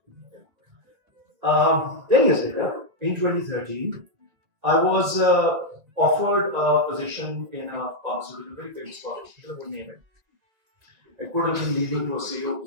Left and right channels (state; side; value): late; left; 2.1 ms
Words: 10 years later, in 2013, I was offered a position in a pharmaceutical, very famous pharmaceutical, I won't name it. It could have been leading to a CEO